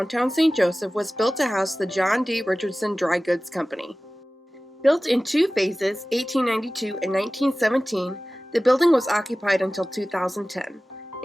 St. Joseph was built to house the John D. Richardson Dry Goods Company. Built in two phases, 1892 and 1917, the building was occupied until 2010.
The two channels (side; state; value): both; normal; correlation 0.97